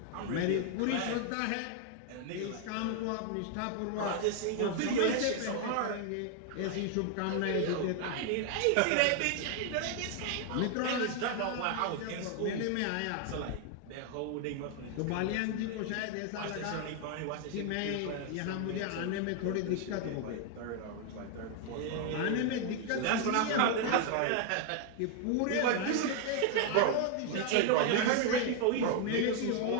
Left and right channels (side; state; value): both; different; correlation 0.00